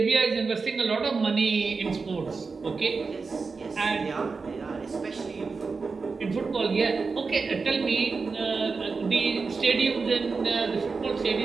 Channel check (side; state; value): left; quieter; 4.6 dB